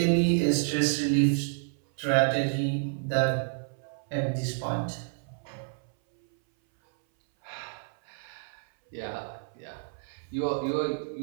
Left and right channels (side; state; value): left; silent; 58 dB below the other